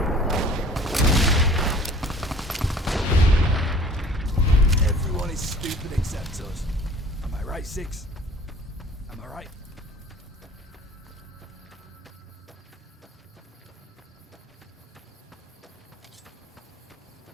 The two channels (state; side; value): normal; both; correlation 0.49